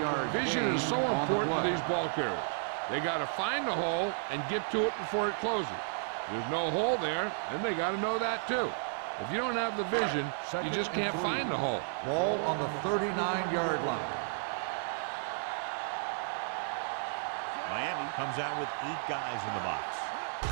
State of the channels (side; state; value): left; silent; digital silence